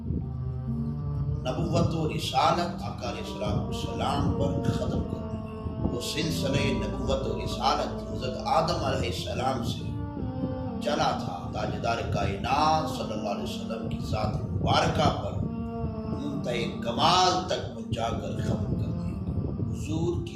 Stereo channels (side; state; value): both; identical; correlation 1.00